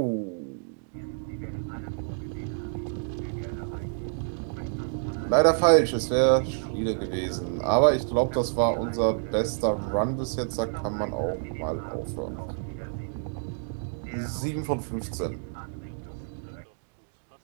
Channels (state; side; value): silent; left; digital silence